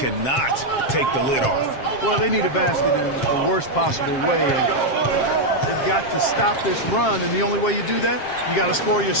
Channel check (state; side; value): late; right; 7.5 ms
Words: take the lid off. Well, they need a basket in the worst possible way, and they've got to stop this run, and the only way you do that, you got to score